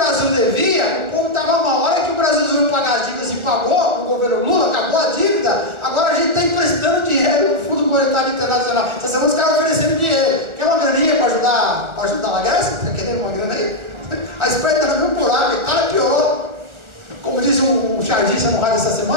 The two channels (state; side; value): late; left; 1.4 ms